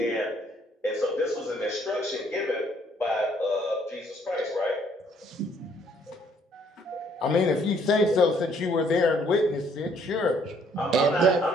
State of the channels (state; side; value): normal; both; correlation 0.64